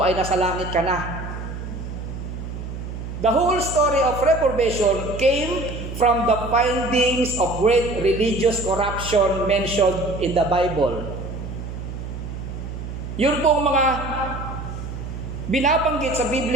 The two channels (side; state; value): right; noise; hum, 8 dB below the sound